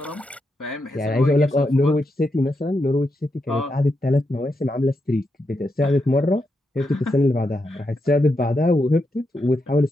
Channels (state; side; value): normal; both; correlation 0.84